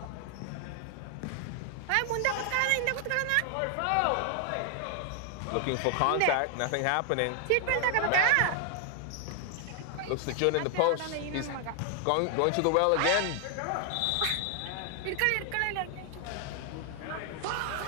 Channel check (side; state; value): both; different; correlation 0.00